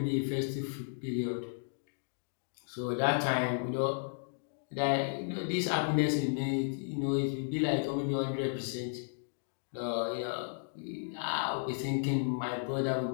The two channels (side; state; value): right; silent; digital silence